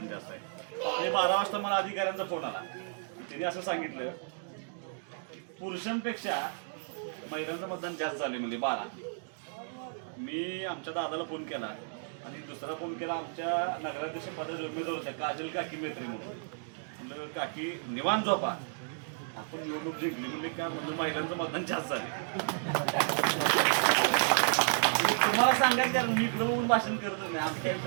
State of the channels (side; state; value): left; silent; digital silence